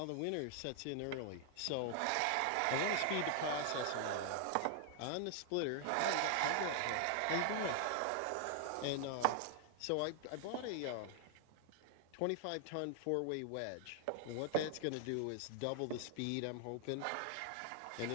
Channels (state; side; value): different; both; correlation -0.01